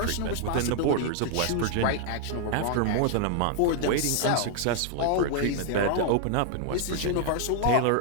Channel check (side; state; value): both; different; correlation 0.00